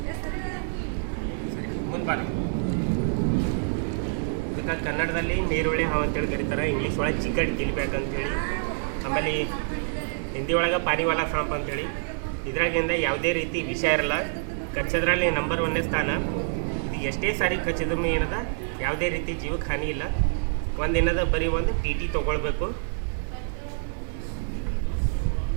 ಇದಕ್ಕೆ ಕನ್ನಡದಲ್ಲಿ ನೀರುಳ್ಳಿ ಹಾವು ಅಂತೇಳಿ ಕರೀತಾರೆ, ಇಂಗ್ಲೀಷ್ ಒಳಗೆ ಚಿಕನ್ ಗಿಲ್ಬ್ಯಾಕ್ ಅಂತೇಳಿ, ಆಮೇಲೆ ಹಿಂದಿ ಒಳಗೆ ಪಾನಿವಾಲ ಸಾಂಪ್ ಅಂತೇಳಿ. ಇದ್ರಾಗಿಂದ ಯಾವುದೇ ರೀತಿ ವಿಷ ಇರಲ್ಲ, ಕಚ್ಚದ್ರಲ್ಲಿ ನಂಬರ್ 1ನೇ ಸ್ಥಾನ. ಇದು ಎಷ್ಟೇ ಸಾರಿ ಕಚ್ಚಿದ್ರೂ ಏನದ ಯಾವುದೇ ರೀತಿ ಜೀವಕ್ಕೆ ಹಾನಿ ಇಲ್ಲ. ಒಂದೇನದ ಬರೀ ಒಂದು TT ತೊಗೊಳ್ಬೇಕು.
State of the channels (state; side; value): silent; left; digital silence